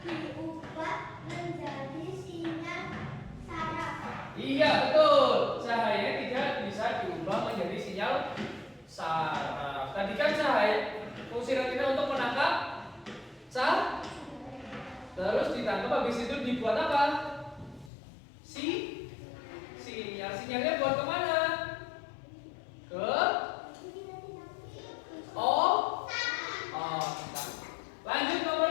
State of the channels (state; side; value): drops out; right; at 17.9 s